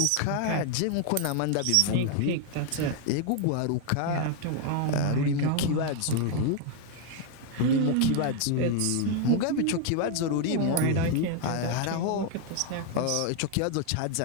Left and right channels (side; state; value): both; different; correlation 0.00